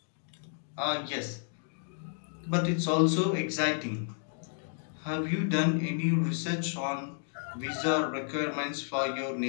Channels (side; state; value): right; silent; digital silence